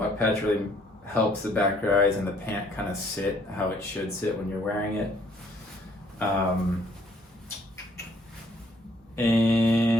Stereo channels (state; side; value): normal; both; correlation 0.63